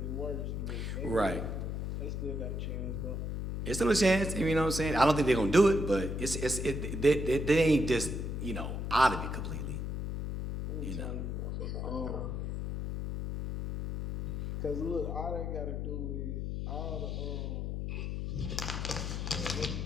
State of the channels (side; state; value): left; noise; hum, 3 dB below the sound